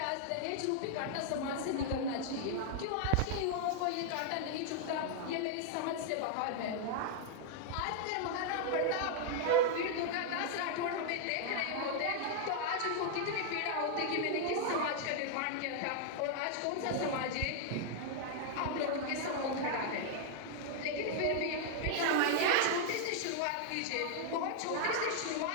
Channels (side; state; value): both; different; correlation 0.00